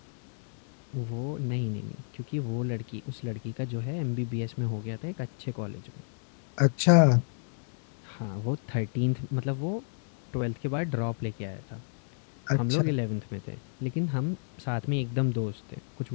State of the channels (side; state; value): right; silent; digital silence